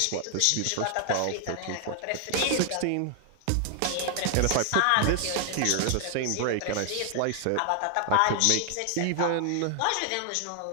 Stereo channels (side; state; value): both; different; correlation 0.00